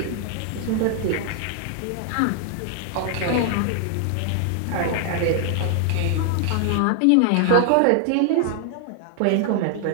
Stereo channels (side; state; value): both; different; correlation 0.00